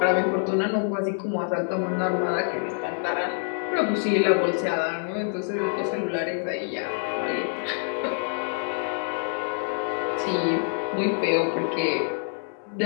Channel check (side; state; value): right; silent; 57 dB below the other